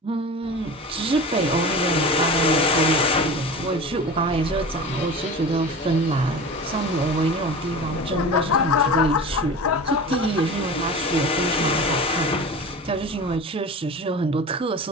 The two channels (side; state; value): both; normal; correlation 0.33